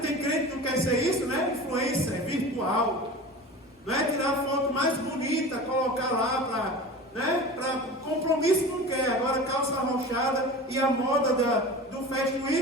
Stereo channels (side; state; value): both; normal; correlation 0.34